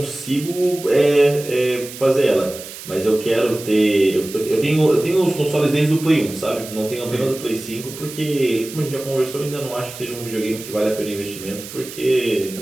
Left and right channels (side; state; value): right; noise; hiss, 13 dB below the sound